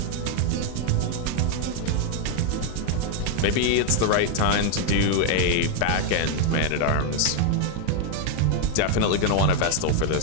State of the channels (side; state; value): both; different; correlation 0.00